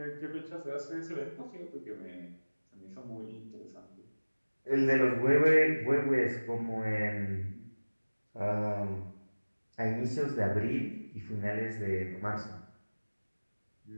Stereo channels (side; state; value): both; inverted; correlation -1.00